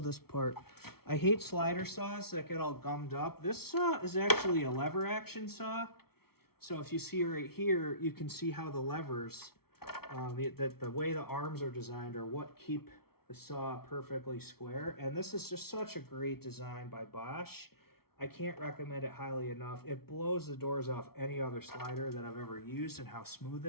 part. I hate slider saws that get all gummed up. This saw is actually a lever action saw. So if you see right here, you can see how the levers, the way the arms are designed are what keep the saw perfectly square. And this is just such a great design by Bosch. I can't recommend it highly enough. It blows the doors off any other slider that I've ever used, and how smooth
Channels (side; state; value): right; late; 0.95 ms